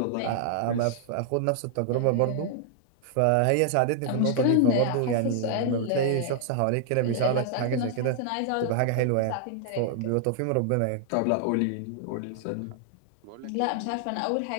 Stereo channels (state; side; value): different; both; correlation 0.00